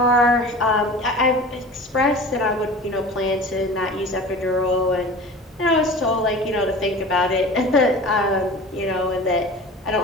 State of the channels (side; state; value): both; normal; correlation 0.38